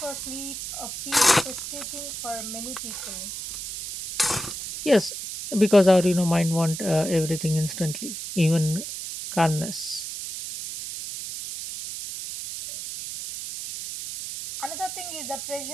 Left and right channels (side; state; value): right; noise; hiss, 7 dB below the sound